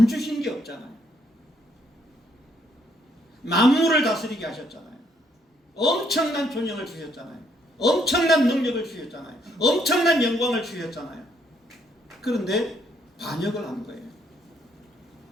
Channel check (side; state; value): both; normal; correlation 0.71